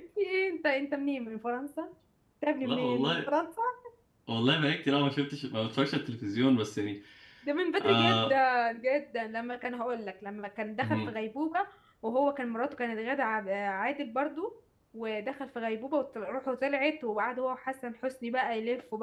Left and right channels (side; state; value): both; identical; correlation 1.00